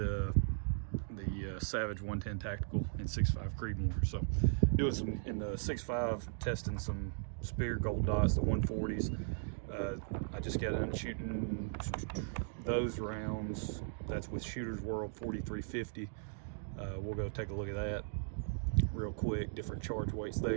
Savage 110 Tactical in 6.5 Creedmoor. So doing some in the 6.5, testing some Speer Gold Dots, the 140s. I just got done shooting those rounds. That's with Shooter's World 4350. We'll go take a look at that real quick, different charge weights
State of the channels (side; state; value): left; silent; digital silence